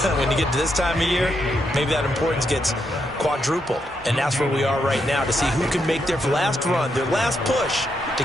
When you get to this time of year, maybe that importance gets quadrupled. And that's where we are right now to see who can make their last run, their last push to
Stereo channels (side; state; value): both; normal; correlation 0.80